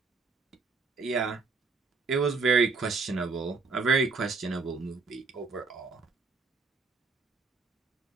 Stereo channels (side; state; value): left; quieter; 4.5 dB